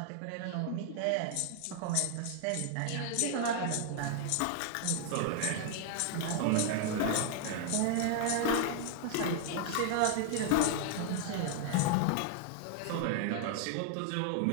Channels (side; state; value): both; different; correlation 0.00